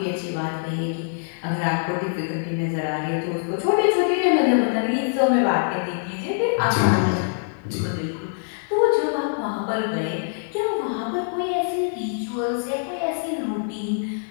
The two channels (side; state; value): right; silent; 63 dB below the other